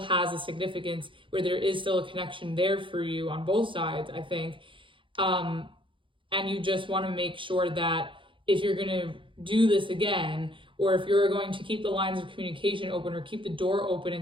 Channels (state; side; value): late; left; 0.25 ms